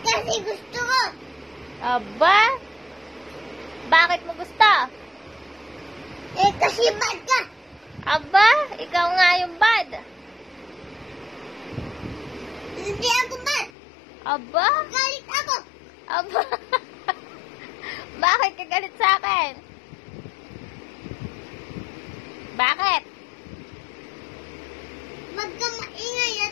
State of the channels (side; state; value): right; drops out; at 13.7 s